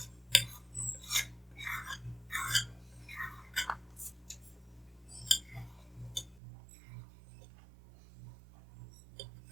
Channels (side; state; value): left; drops out; at 6.4 s